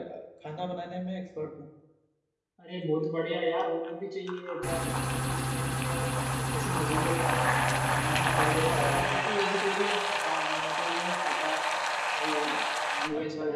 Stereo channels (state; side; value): identical; both; correlation 1.00